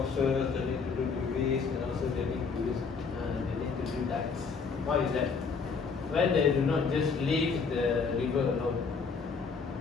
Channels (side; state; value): right; quieter; 5.1 dB